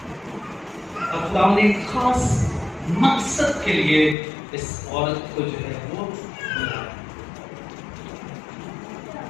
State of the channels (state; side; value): drops out; right; at 4.2 s